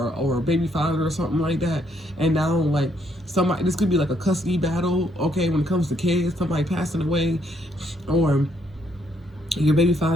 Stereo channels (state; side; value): normal; both; correlation 0.71